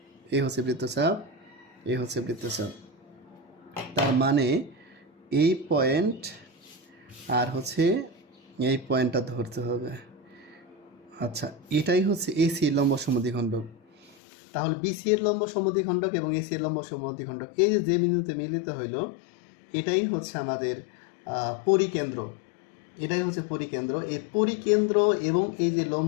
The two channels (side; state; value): right; drops out; at 14.2 s